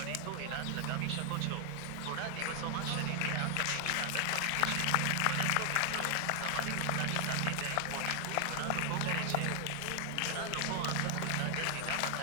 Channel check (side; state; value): both; different; correlation 0.00